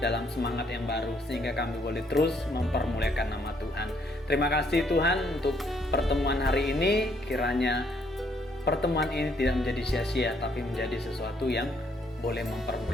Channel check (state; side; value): normal; both; correlation 0.69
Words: semangat yang baru, sehingga kami boleh terus mempermuliakan nama Tuhan. Terima kasih Tuhan untuk pertemuan hari ini. Kiranya pertemuan ini tidak menjadi sia-sia, tapi menjadi sesuatu yang boleh